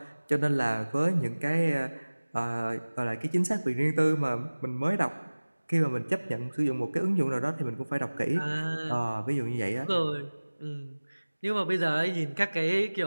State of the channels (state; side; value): inverted; both; correlation -1.00